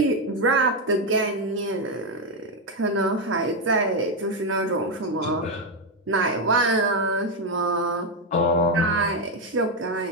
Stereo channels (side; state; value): both; normal; correlation 0.05